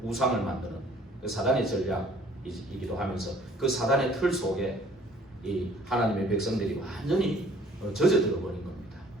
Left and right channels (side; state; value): both; normal; correlation 0.56